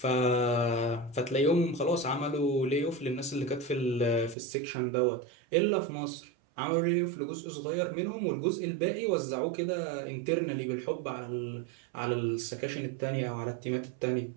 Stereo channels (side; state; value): left; drops out; at 4.4 s